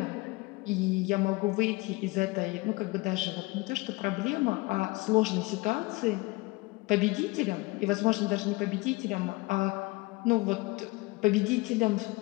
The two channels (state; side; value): quieter; right; 23.2 dB